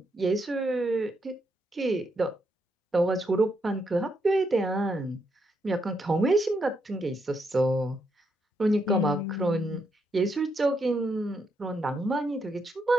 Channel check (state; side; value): normal; both; correlation 0.79